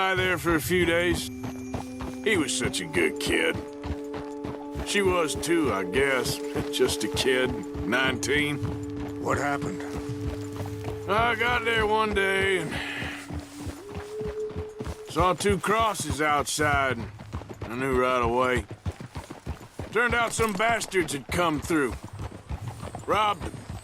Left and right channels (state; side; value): identical; both; correlation 1.00